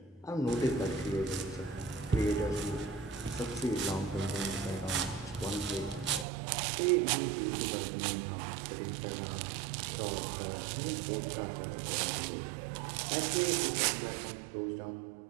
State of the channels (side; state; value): left; drops out; at 6.2 s